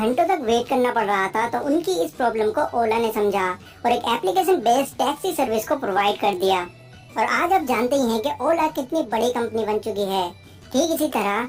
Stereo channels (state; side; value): identical; both; correlation 1.00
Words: तक वेट करना पड़ रहा था तो उनकी इस प्रॉब्लम को ओला ने समझा और एक एप्लीकेशन बेस्ड टैक्सी सर्विस को प्रोवाइड कर दिया। और आज आप जानते ही हैं कि ओला कितनी बड़ी कंपनी बन चुकी है। ठीक इसी